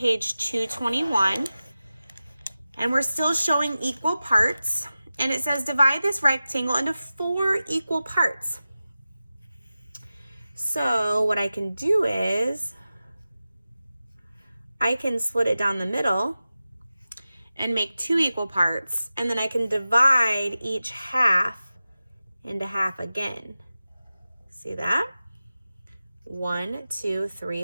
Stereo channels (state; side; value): inverted; both; correlation -0.95